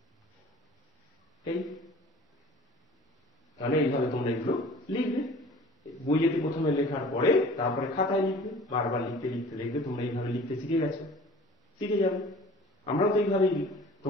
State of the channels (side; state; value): both; normal; correlation 0.45